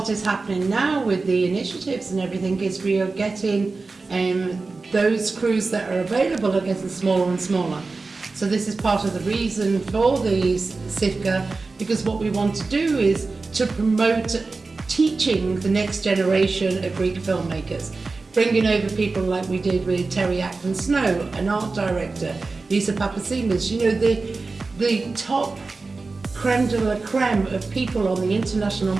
is happening now with the initiatives and everything is we are getting those crews that are available are getting smaller and smaller. So this is part of the reason for the SIFCA, because what we want to do is to promote teaching the next generation of Greek filmmakers. Bringing over people like we did with Terry Ackman-Snow, an art director, Liza Papatzimas, the top creme de la creme of people on the international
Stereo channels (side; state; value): left; quieter; 3.9 dB